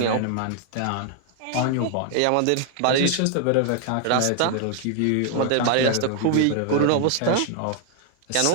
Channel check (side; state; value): both; different; correlation 0.00